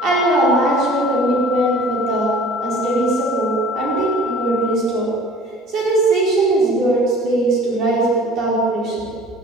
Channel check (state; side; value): normal; both; correlation 0.47